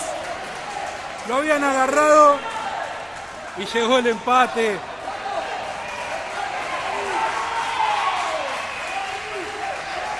Lo habían agarrado y llegó el empate.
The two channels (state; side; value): identical; both; correlation 1.00